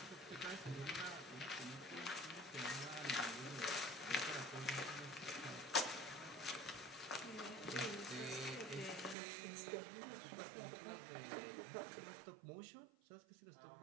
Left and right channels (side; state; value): left; drops out; at 9.2 s